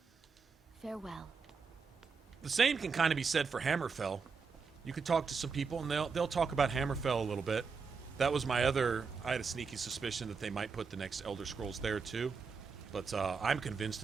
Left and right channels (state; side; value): quieter; left; 5.2 dB